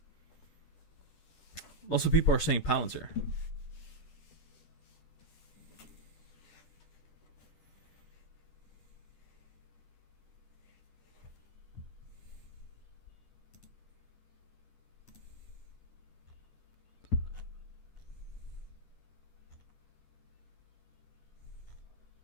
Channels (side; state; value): right; late; 10 ms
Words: Lots of people are saying Palantir.